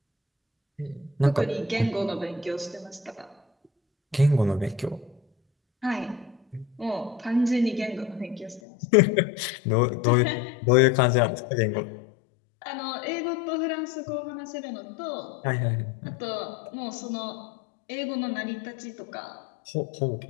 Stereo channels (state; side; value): drops out; right; at 8.6 s